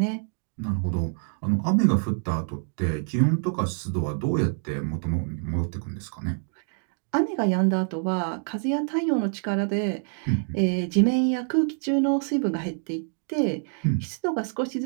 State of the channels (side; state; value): left; silent; 61 dB below the other